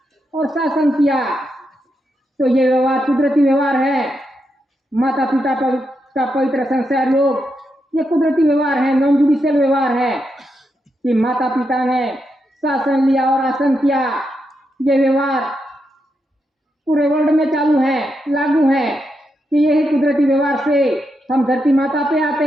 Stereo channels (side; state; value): both; normal; correlation 0.84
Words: और शासन किया। तो ये व्यवहार कुदरती व्यवहार है। माता पिता का पवित्र संस्कार योग ये कुदरती व्यवहार है, नॉन जुडिशियल व्यवहार है कि माता पिता ने शासन लिया और आसन किया। ये व्यवहार पूरे वर्ल्ड में चालू है, लागू है कि यही कुदरती व्यवहार से हम धरती माता पे आते